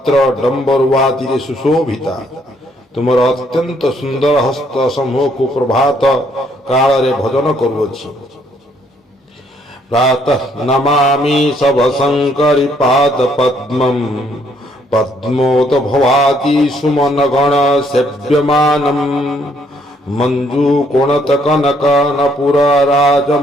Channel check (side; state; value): both; normal; correlation 0.68